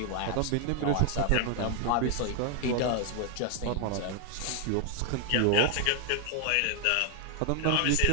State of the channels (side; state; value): both; different; correlation 0.00